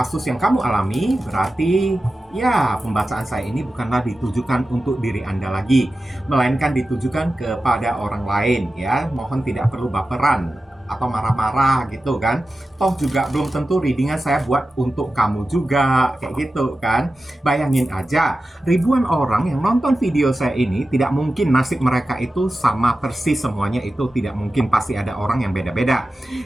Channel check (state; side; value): normal; both; correlation 0.93